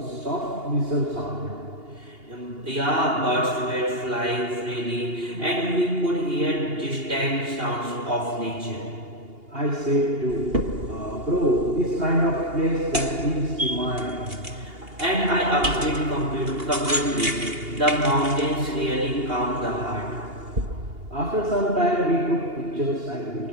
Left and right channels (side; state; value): left; late; 2.8 ms